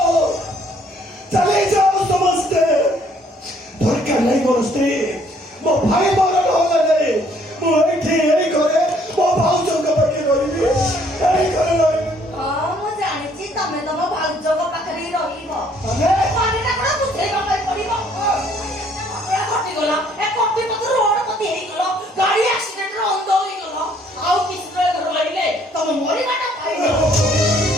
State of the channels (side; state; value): both; normal; correlation 0.63